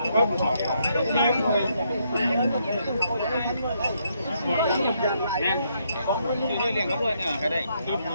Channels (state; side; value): inverted; both; correlation -0.74